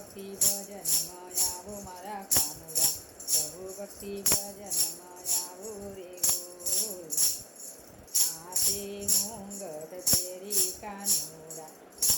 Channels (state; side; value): identical; both; correlation 1.00